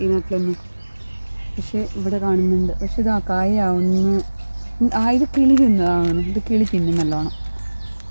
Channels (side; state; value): both; inverted; correlation -1.00